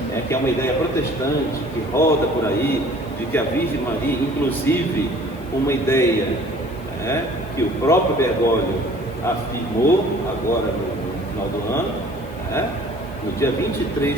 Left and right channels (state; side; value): noise; left; hiss, 26 dB below the sound